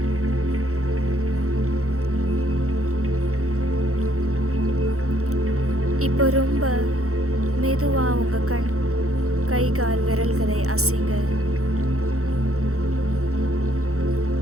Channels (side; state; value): left; late; 0.64 ms